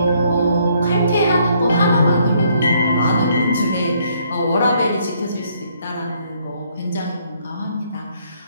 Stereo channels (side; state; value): both; inverted; correlation -0.68